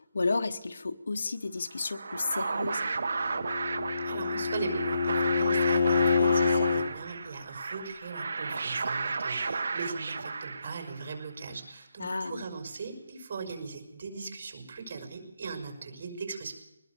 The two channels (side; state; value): both; inverted; correlation -0.82